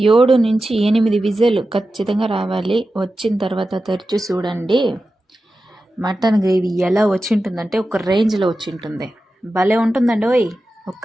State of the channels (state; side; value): normal; both; correlation 0.93